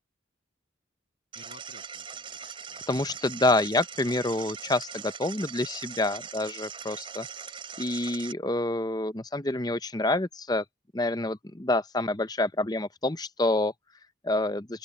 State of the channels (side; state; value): both; normal; correlation 0.50